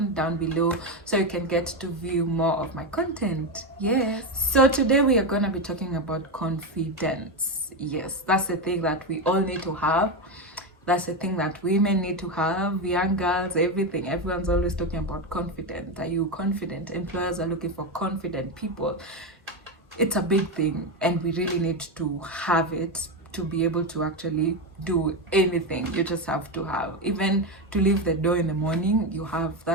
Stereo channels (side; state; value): both; normal; correlation 0.12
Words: down below so you can get to view more of my content. Yes. So today we are going to be talking about confidence. Yes, that's the thing that we all need to have. That's the thing that women need to have, young girls, everything. Everyone's always talking about confidence. Are you confident? Employers are looking for confident people. It's a big thing and we really need to have it to be able to actually do anything. You just have to have, even to leave the door in the morning, you have